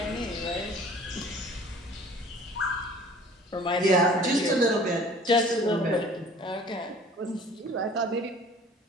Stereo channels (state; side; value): normal; both; correlation 0.48